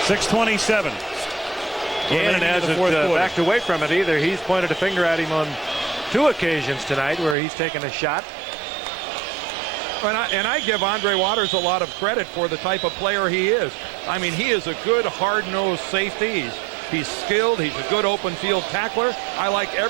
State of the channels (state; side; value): drops out; left; at 7.4 s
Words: 6:27. Gannon hasn't backed away from it either. He's pointed a finger at him on 2 occasions tonight where he's taken a shot. And I give Andre Waters a lot of credit for the type of player he is. I mean, he is a good hard-nosed safety. He's skilled. He's a good open field tackler. I like